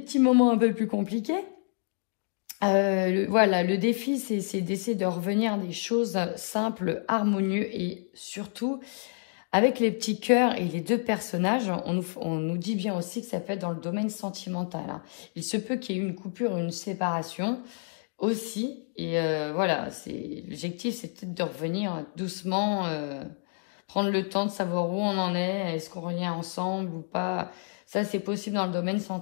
moments un peu plus compliqués. Voilà, le défi, c'est d'essayer de revenir à des choses simples, harmonieuses et surtout, avec les petits cœurs et les deux personnages, on nous dit bien aussi que ça peut être dans le domaine sentimental. Hein. Il se peut qu'il y ait une coupure, une séparation aussi. Et voilà, l'objectif, c'est peut-être de revenir doucement, prendre le temps de savoir où on en est, est-ce qu'on revient ensemble ou pas. Ça, c'est possible dans le domaine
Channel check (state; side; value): silent; right; 59 dB below the other